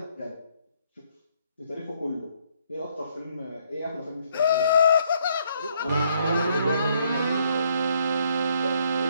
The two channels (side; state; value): both; inverted; correlation -0.69